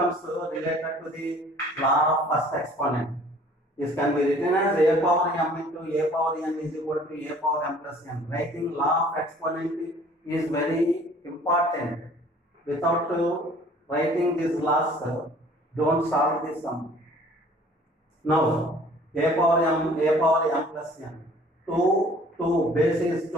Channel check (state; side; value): normal; both; correlation 0.52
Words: related to the law of first exponent. This can be written as a power m into a power n is equal to a power m plus n. Writing law of exponent is very important. Without writing these laws, don't solve this sum. Now, a power m plus n. 2, base is